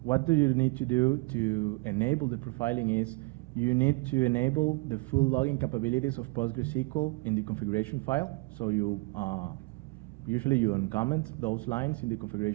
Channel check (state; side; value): quieter; left; 27.4 dB